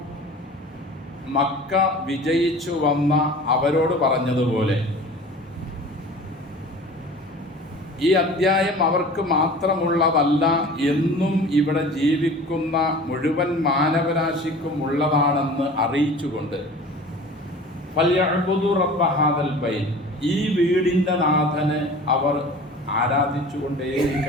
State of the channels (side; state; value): both; normal; correlation 0.41